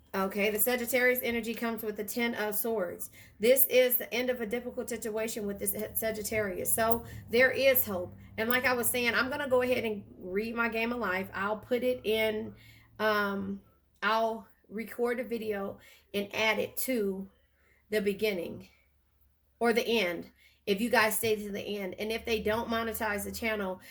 Okay, the Sagittarius energy comes with the Ten of Swords. This is the end of a difficult situation with this Sagittarius. So there is hope. And like I was saying, I'm going to go ahead and read my game of life. I'll put it in, I'll record a video and add it to the beginning or the end, if you guys stay to the end. And if they don't monetize the channel,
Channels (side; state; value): both; identical; correlation 1.00